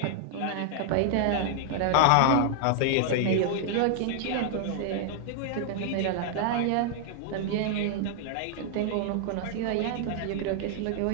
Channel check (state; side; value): different; both; correlation 0.00